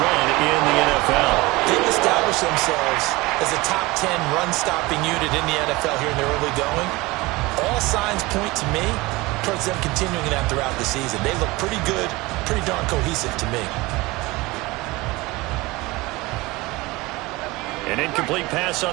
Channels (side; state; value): left; quieter; 21.9 dB